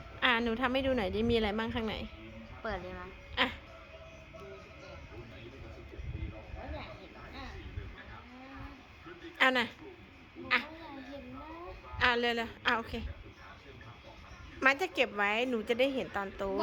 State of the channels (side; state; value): both; identical; correlation 1.00